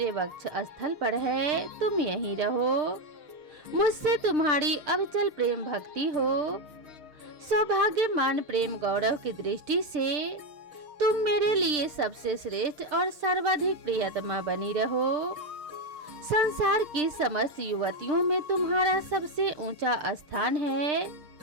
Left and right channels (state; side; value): late; left; 6.7 ms